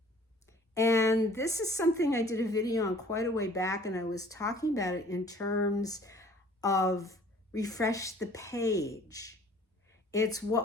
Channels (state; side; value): normal; both; correlation 0.53